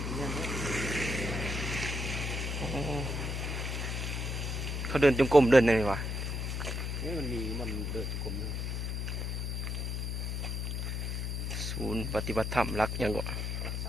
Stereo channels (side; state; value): left; noise; hum, 2 dB below the sound